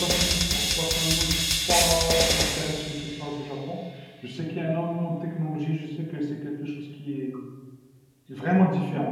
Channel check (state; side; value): identical; both; correlation 1.00